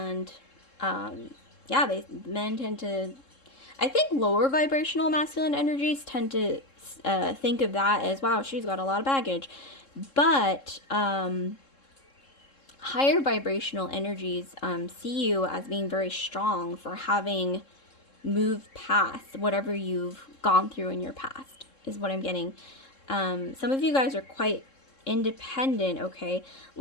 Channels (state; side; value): late; right; 3.7 ms